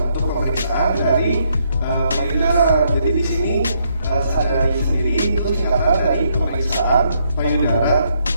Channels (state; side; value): inverted; both; correlation -0.73